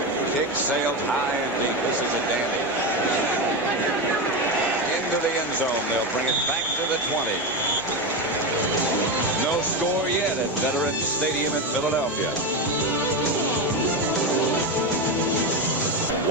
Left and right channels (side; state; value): both; normal; correlation 0.14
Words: Kick sailed high and deep. This is a dandy. Into the end zone. They'll bring it back to the 20. No score yet at Veterans Stadium in Philadelphia.